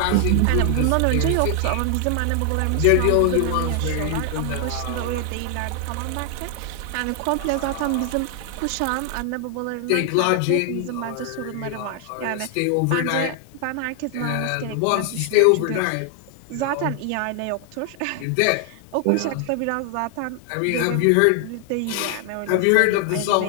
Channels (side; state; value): both; different; correlation 0.00